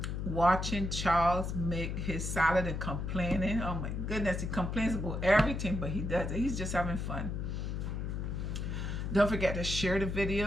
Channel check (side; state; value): left; noise; hum, 3 dB below the sound